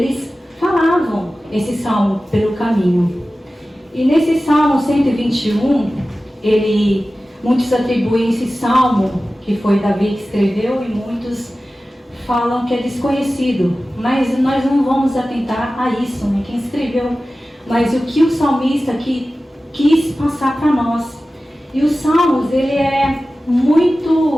falavam esse salmo pelo caminho. E nesse Salmo 121, muitos atribuem esse salmo, que foi Davi que escreveu, e muitos falam que é desconhecido. Mas nós não vamos atentar a isso, né, quem escreveu, mas o que o salmista quis passar para nós. E os Salmos, ele é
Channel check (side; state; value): both; normal; correlation 0.95